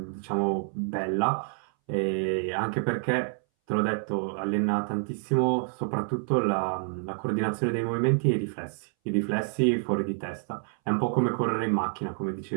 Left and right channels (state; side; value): silent; left; 59 dB below the other